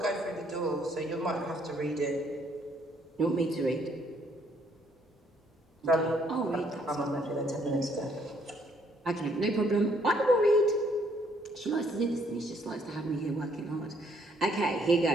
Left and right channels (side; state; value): both; normal; correlation 0.67